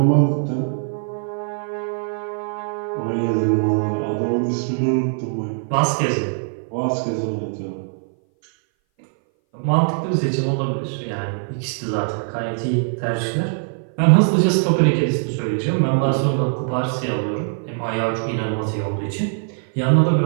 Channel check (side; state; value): left; silent; 59 dB below the other